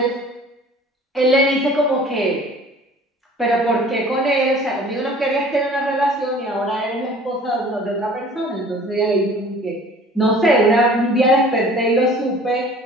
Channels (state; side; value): normal; both; correlation 0.48